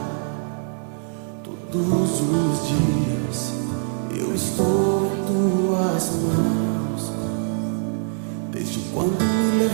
Todos os dias eu estou em tuas mãos. Desde quando me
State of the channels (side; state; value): left; silent; 63 dB below the other